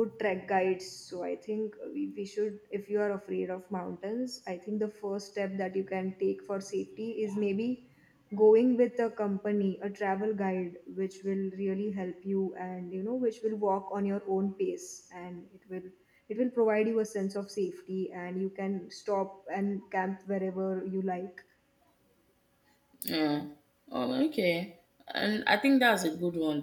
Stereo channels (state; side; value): identical; both; correlation 1.00